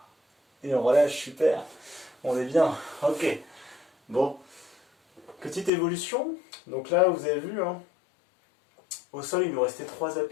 Et on relâche, super. On est bien. Ok. Bon. Petite évolution. Donc là, vous avez vu, hein, au sol, il nous restait 3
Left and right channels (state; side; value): drops out; right; at 5.7 s